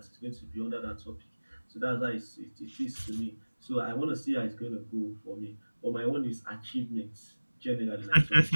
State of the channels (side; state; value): both; inverted; correlation -1.00